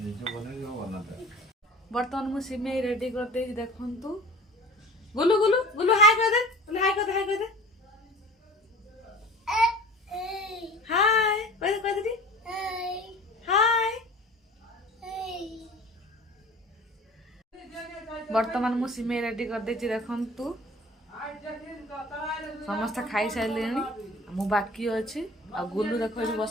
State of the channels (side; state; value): both; normal; correlation 0.42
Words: ବର୍ତ୍ତମାନ ମୁଁ ସିମେଇ ରେଡି କରିଦେଇଛି ଦେଖନ୍ତୁ। ଗୁଲୁ ଗୁଲୁ ଗୁଲୁ ହାଇ କରିଦେ ହାଇ କରିଦେ ହାଇ କରିଦେ ହାଇ କହିଦେ କହିଦେ ହାଇ। ବର୍ତ୍ତମାନ ମୁଁ ସିମେଇ ରେଡି କରିଦେଇଛି ଦେଖନ୍ତୁ। ସମସ୍ତେ ଖାଇସାରିଲେଣି ମୁଁ ବାକି ଅଛି। ଆଉ ଗୁଲୁ ଦେଖ ଏଠି